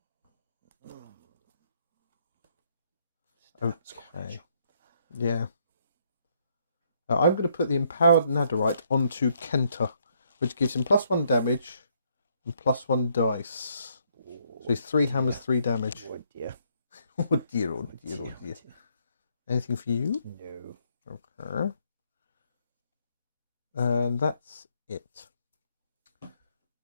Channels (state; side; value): inverted; both; correlation -0.71